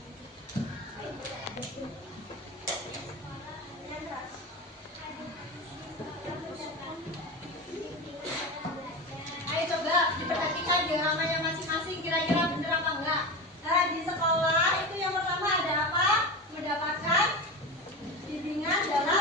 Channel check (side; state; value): both; normal; correlation 0.24